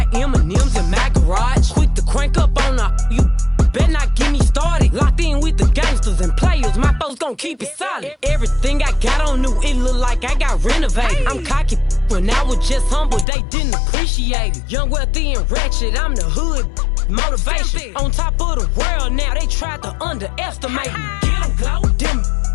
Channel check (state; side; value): drops out; right; at 13.2 s